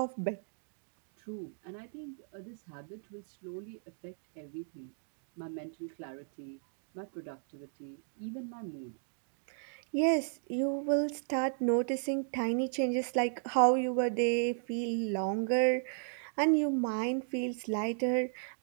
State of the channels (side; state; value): left; silent; digital silence